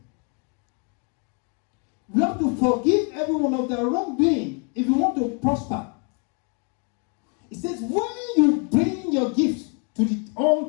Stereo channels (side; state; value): right; quieter; 37.3 dB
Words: You have to forgive everyone of their wrongdoing if you want to prosper. It says, when you bring your gifts to the